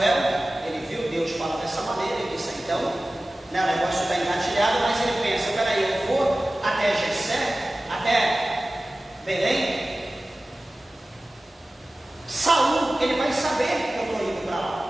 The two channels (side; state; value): both; normal; correlation 0.97